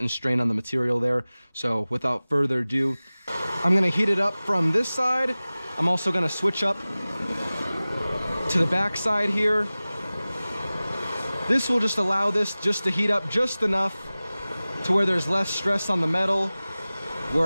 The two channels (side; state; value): both; inverted; correlation -0.98